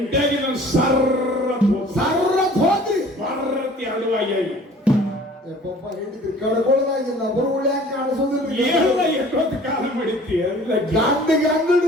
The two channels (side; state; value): both; normal; correlation 0.49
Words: ನಾನು ಸರ್ರತ್ ಹೋದ್ರಿ. ಬರ್ರತಿ ಅಡುವಾಗಿ ಹಿಡಿದ್ರಿ ಕಡ್ಕೊಳ್ದಾಗಿಲ್ಲ. ಬರು ಉಳ್ಯಾಕ ಕಾಣಿಸೋದಿಲ್ಲ. ಎಲ್ಲ ಎಷ್ಟೊತ್ತು ಕಾಲ ಮಾಡಿತಿ ಗಂಡಿಗೆ